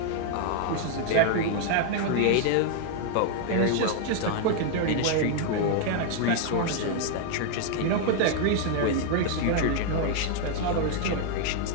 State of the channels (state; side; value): different; both; correlation 0.00